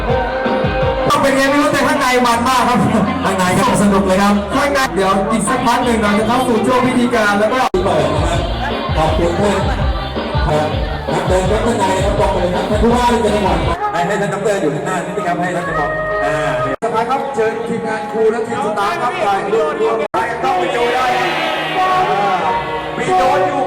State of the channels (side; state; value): both; identical; correlation 1.00